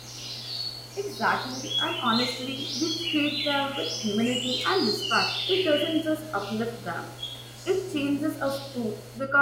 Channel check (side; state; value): both; identical; correlation 1.00